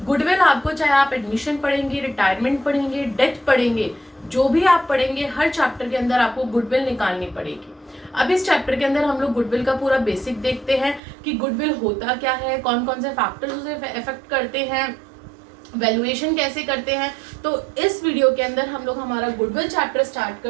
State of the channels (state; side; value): drops out; left; at 11.0 s